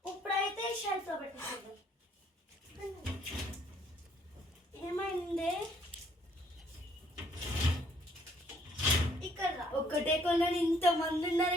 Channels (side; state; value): both; normal; correlation 0.64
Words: ఇప్పుడైతే షెల్ఫ్లో పెట్టేసాం. ఏమైంది? ఇక్కడ రా. ఒక్కటే కొన్నాను, ఇంతమంది ఉన్నారు,